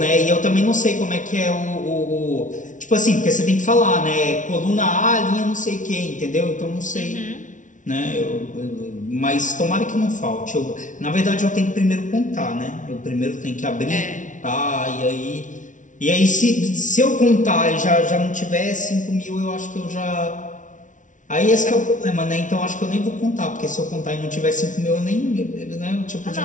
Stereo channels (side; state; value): right; late; 0.37 ms